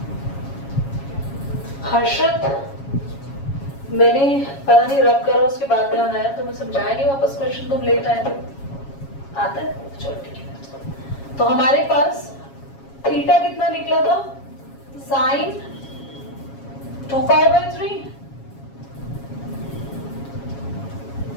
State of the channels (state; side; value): late; right; 7.3 ms